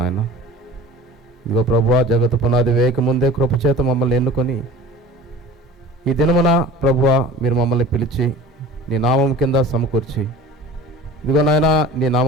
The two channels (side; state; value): both; normal; correlation 0.41